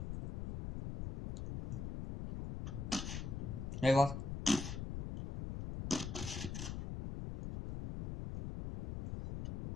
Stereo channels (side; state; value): left; noise; rumble, 5 dB below the sound